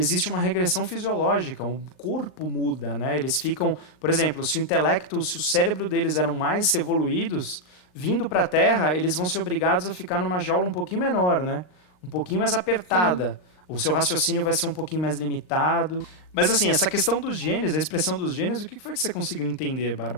uma regressão fisiológica, o corpo muda, né? Eles ficam, por exemplo, se o cérebro deles eram mais evoluídos, vindo para a Terra, eles vão ser obrigados a ficar numa jaula um pouquinho menor, né? Um pouquinho mais apertada. Sim. O seu raciocínio vai ser um pouquinho mais limitado. Mas assim, essa questão dos genes, a expressão dos genes, o que foi que você conseguiu entender,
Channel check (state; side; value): late; right; 39 ms